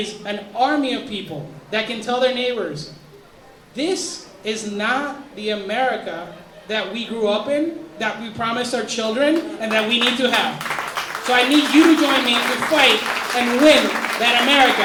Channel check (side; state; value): both; identical; correlation 1.00